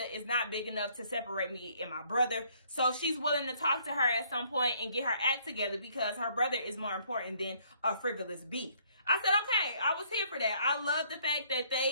is not big enough to separate me and my brother. So she's willing to talk to her at some point and get her act together because her brother is more important than a frivolous beef. I said, okay, I was here for that. I love the fact that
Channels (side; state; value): both; inverted; correlation -0.64